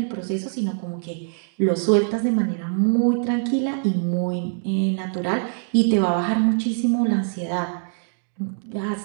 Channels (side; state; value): left; silent; digital silence